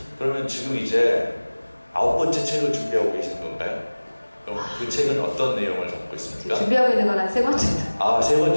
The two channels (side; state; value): both; inverted; correlation -1.00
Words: 그러면 지금 이제 9번째 책을 준비하고 계시는 건가요? 그럼 그 책은 어떤 내용을 담고 있습니까? 준비하고 있는 건 한 3번 정도. 3번